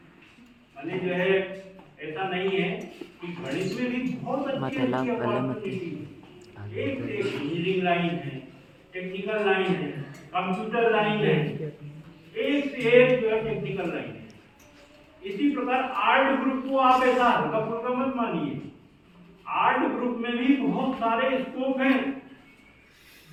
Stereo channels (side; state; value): both; identical; correlation 1.00